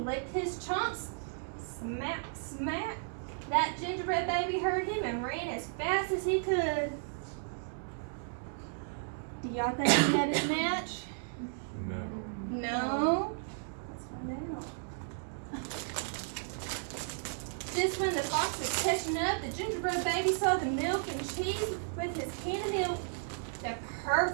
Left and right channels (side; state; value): left; silent; digital silence